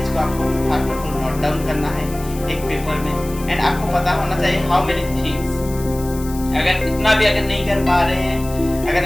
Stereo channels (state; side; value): noise; left; hiss, 16 dB below the sound